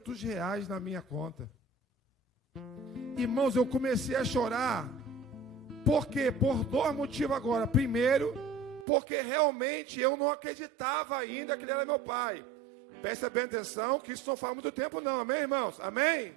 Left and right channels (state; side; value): drops out; left; at 8.8 s